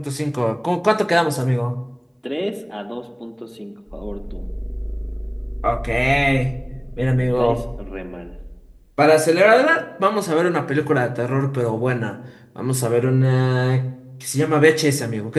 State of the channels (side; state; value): both; identical; correlation 1.00